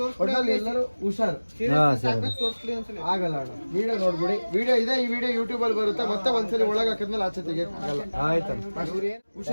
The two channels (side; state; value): both; inverted; correlation -1.00